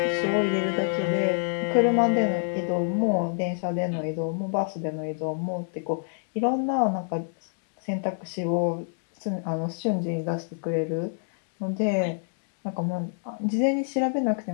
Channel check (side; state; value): right; silent; digital silence